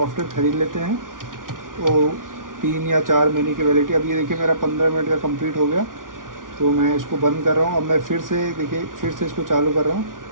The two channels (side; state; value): left; late; 0.89 ms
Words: ख़रीद लेते हैं तो 3 या 4 महीने की वैलिडिटी। अब ये देखिए मेरा 15 मिनट का कंप्लीट हो गया, तो मैं इसको बंद कर रहा हूँ। अब मैं फिर से देखिए फिर से इसको चालू कर रहा हूँ।